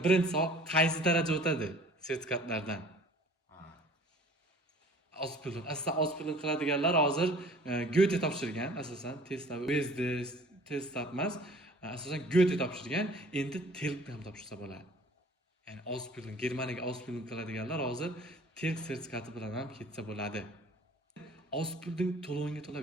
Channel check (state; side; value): normal; both; correlation 0.49